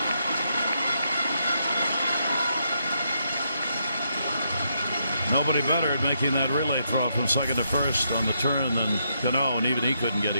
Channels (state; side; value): inverted; both; correlation -0.78